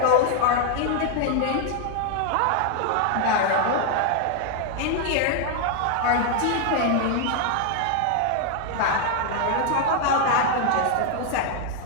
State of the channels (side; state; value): both; different; correlation 0.00